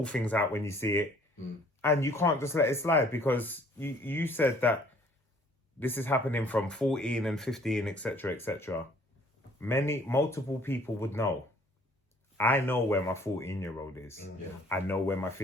things out when you see it, and you can't just let it slide, because you said that this is happening from 14 and 15, etc., etc. Multiple people would know. I know where my 14-year-old is. I know where my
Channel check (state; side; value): normal; both; correlation 0.57